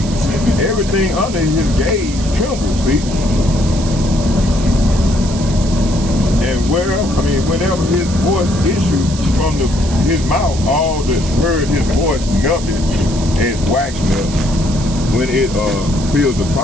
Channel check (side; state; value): right; noise; hiss, 12 dB below the sound